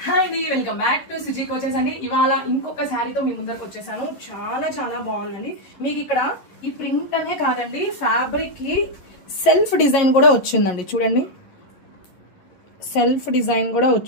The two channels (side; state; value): right; late; 11 ms